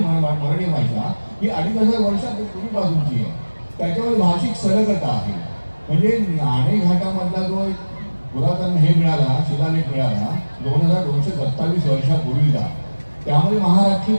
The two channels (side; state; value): both; inverted; correlation -1.00